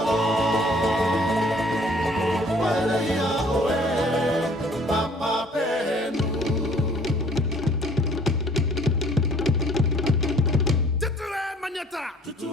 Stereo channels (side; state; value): both; normal; correlation 0.56